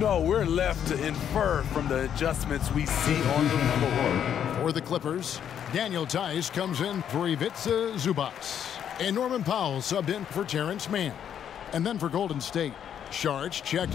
we're left to infer from the adjustments we see on the floor. For the Clippers, Daniel Tice comes in for Ivica Zubac. And Norman Powell subbed in for Terrence Mann. And then for Golden State, Sharch checked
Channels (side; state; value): right; quieter; 9.1 dB